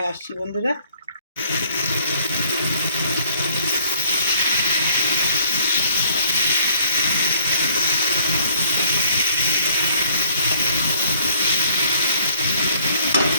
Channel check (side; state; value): both; inverted; correlation -0.60